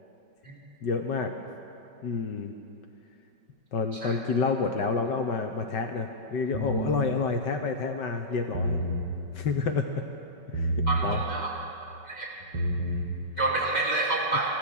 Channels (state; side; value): late; right; 5.3 ms